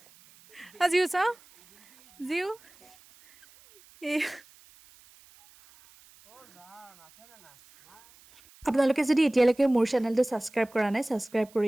জিউ চাওঁ জিউ আপোনালোকে যদি এতিয়ালৈকে মোৰ চেনেলটো ছাবস্ক্ৰাইব কৰা নাই ছাবস্ক্ৰাইব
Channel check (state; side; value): noise; right; hiss, 27 dB below the sound